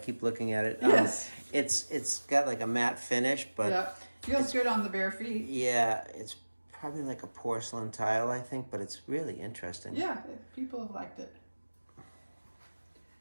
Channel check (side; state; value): both; inverted; correlation -1.00